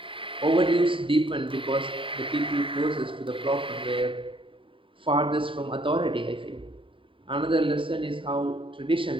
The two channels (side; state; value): left; late; 0.25 ms